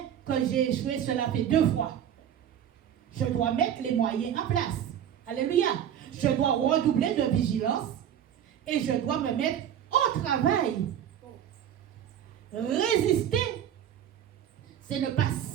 que j'ai échoué, cela fait 2 fois. Je dois mettre les moyens en place. Alléluia. Je dois redoubler de vigilance et je dois me mettre au travail. Résister, c'est ne pas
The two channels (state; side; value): quieter; left; 9.8 dB